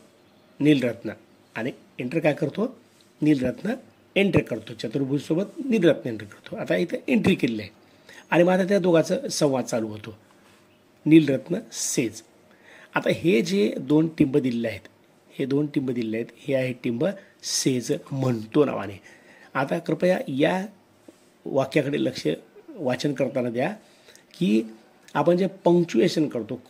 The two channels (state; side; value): identical; both; correlation 1.00